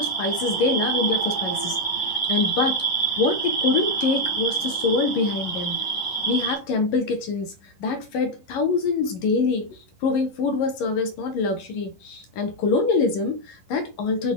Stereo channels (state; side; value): late; right; 11 ms